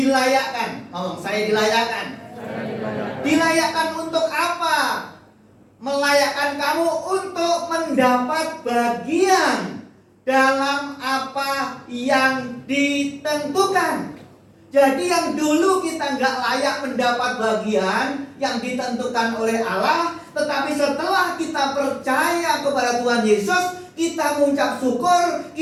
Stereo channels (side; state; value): both; identical; correlation 1.00